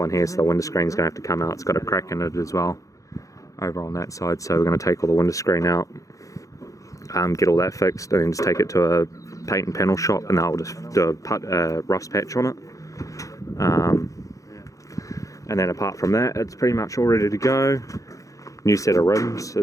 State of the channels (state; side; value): late; right; 0.16 ms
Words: here, so the window screen's going to have to come out. It's got a crack in it as well over on that side, so we're going to take all the window screen out, get all that fixed, and then just take it to a paint and panel shop, and they'll just do a rust patch on it. And then apart from that, it's pretty much all ready to go. New set of rims